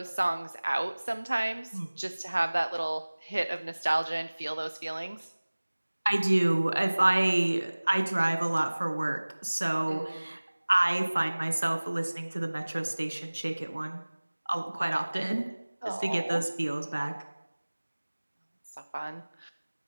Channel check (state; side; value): inverted; both; correlation -1.00